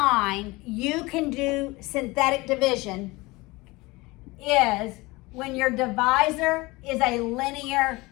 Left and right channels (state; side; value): quieter; right; 22.6 dB